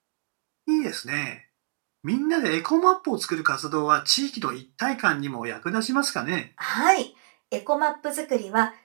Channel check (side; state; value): left; silent; digital silence